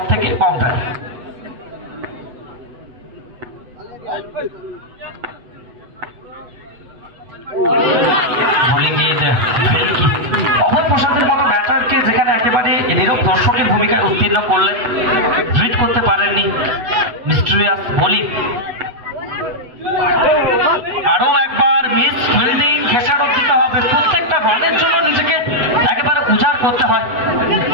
থেকে বাউন্ডারি। অভয় প্রসাদের মতো ব্যাটারকে যেখানে একেবারে নীরব দর্শকের ভূমিকায় উত্তীর্ণ করলেন, রিড করতে পারেননি মিস্টেরিয়াস বোলিং। আরো একবার মিস ফিল্ডিং, খেসারত দিতে হবে। প্রত্যেকটা রানের জন্য নিজেকে একেবারে উজাড় করতে হয়,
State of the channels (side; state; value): left; late; 8.0 ms